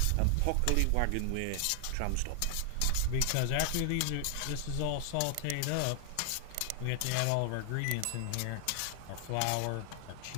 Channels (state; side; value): different; both; correlation 0.00